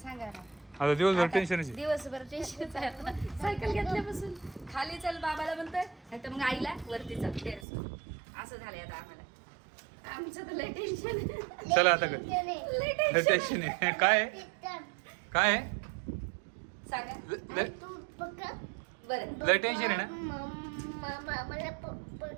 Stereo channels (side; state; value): left; drops out; at 7.7 s